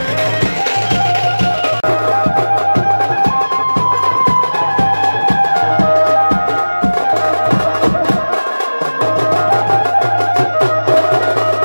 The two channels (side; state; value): both; inverted; correlation -1.00